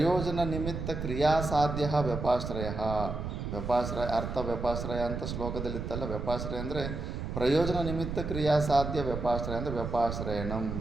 ನಿಮಿತ್ತ ಕ್ರಿಯಾಸಾಧ್ಯ ವ್ಯಪಾಶ್ರಯ. ಅರ್ಥ ವ್ಯಪಾಶ್ರಯ ಅಂತ ಶ್ಲೋಕದಲ್ಲಿತ್ತಲ್ಲ. ವ್ಯಪಾಶ್ರಯ ಅಂದರೆ ಪ್ರಯೋಜನ ನಿಮಿತ್ತ ಕ್ರಿಯಾಸಾಧ್ಯ, ವ್ಯಪಾಶ್ರಯ ಅಂದರೆ ವ್ಯಪಾಶ್ರಯಣಂ,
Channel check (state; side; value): noise; right; rumble, 5 dB below the sound